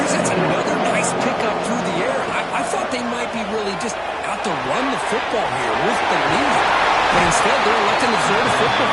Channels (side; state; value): both; identical; correlation 1.00